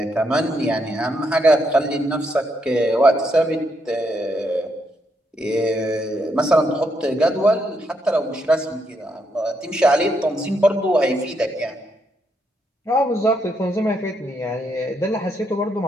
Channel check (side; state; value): both; normal; correlation 0.78